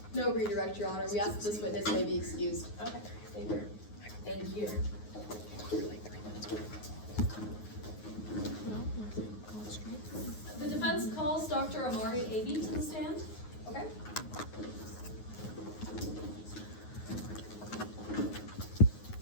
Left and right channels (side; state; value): right; late; 9.5 ms